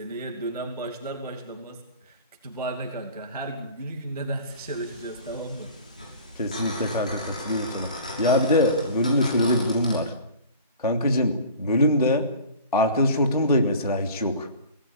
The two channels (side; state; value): both; inverted; correlation -0.43